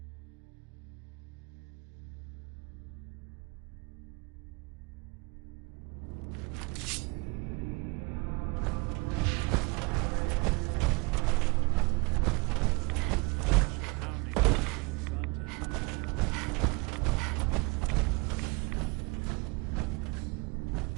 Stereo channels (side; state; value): left; quieter; 28.6 dB